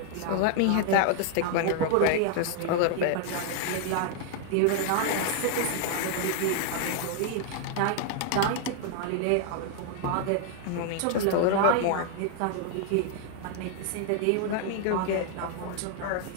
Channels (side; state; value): both; different; correlation 0.00